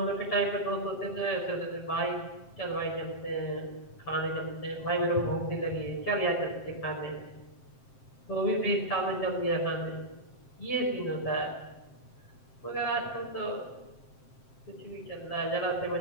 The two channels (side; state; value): right; late; 7.6 ms